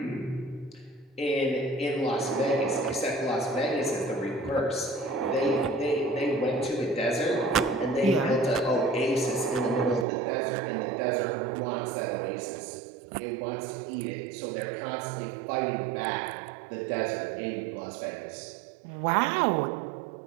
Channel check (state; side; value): drops out; left; at 10.1 s